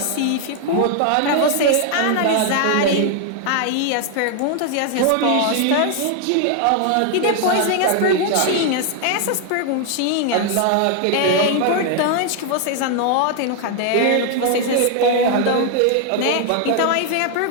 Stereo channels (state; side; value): different; both; correlation 0.00